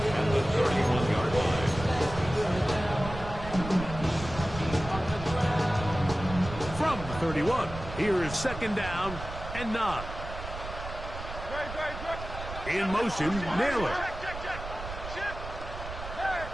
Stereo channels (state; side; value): noise; right; rumble, 10 dB below the sound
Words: at the 31-yard line. From the 31, here is 2nd down and 9. In motion, Naylor.